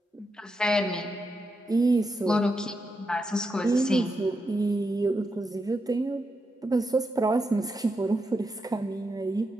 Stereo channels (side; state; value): both; normal; correlation 0.85